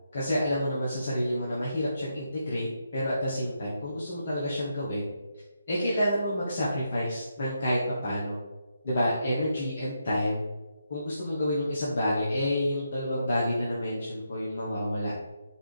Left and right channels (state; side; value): inverted; both; correlation -0.82